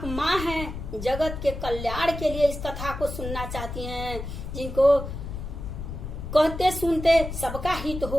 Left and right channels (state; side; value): noise; left; rumble, 7 dB below the sound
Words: माँ हैं, जगत के कल्याण के लिए इस कथा को सुनना चाहती हैं। जिनको कहते सुनते सबका हित